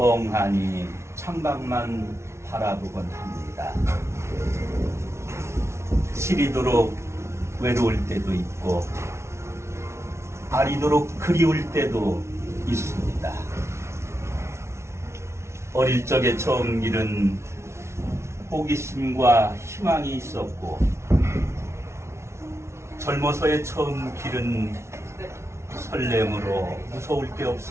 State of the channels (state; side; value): late; left; 0.13 ms